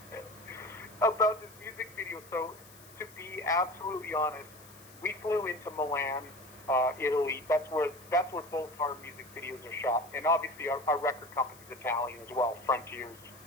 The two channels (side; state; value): left; noise; hiss, 21 dB below the sound